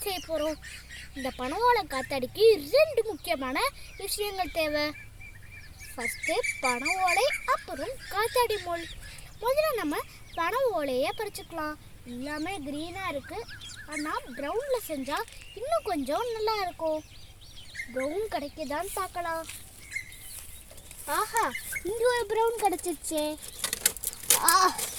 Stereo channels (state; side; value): identical; both; correlation 1.00